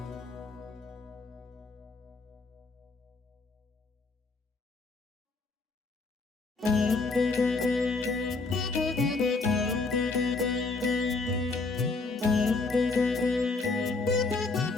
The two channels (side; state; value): right; quieter; 3.8 dB